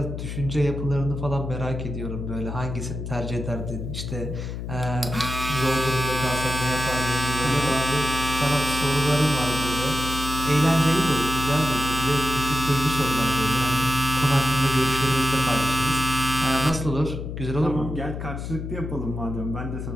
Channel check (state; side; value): noise; left; hum, 6 dB below the sound